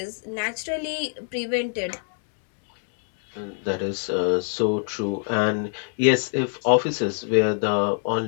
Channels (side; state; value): right; silent; 62 dB below the other